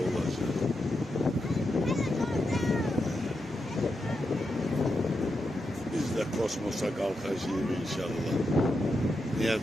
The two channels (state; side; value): normal; both; correlation 0.86